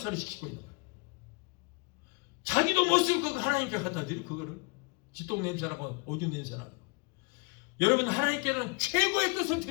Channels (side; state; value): right; quieter; 30.0 dB